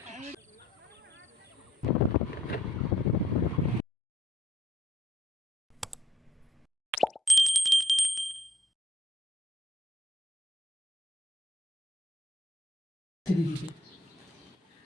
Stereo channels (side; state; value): both; normal; correlation 0.69